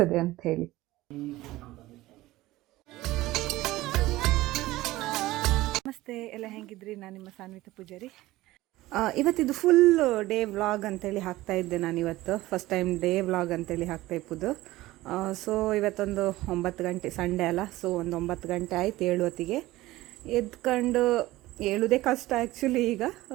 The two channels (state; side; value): quieter; left; 17.6 dB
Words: ಅಂತ ಹೇಳಿ. ನಮಸ್ತೆ, ಎಲ್ಲ ಹೆಂಗಿದ್ರಿ? ನಾನು ನಿಮ್ಮ ಸಾನ್ವಿತ ಪೂಜಾರಿ. ಇವತ್ತಿದು ಫುಲ್ ಡೇ ವ್ಲಾಗ್ ಅಂತೇಳಿ ಹಾಕ್ತಾ ಇದ್ದೆ ನಾನು. ಇವತ್ತು ಫಸ್ಟ್ ಟೈಮ್ ಡೇ ವ್ಲಾಗ್ ಅಂತೇಳಿ ಹಾಕ್ತಾ ಇಪ್ಪುದು. ಸೊ ಇವತ್ತೊಂದು 9 ಗಂಟೆ, ಸಂಡೇ ಅಲ್ಲ, ಸೊ ಒಂದು 9 ಗಂಟೆ ಆಯ್ತು ಏಳುವತ್ತಿಗೆ ಎದ್ಕೊಂಡು. ಹೇಳುವುದೇ ಕಷ್ಟ ಆ್ಯಕ್ಚುಲಿ ಈಗ.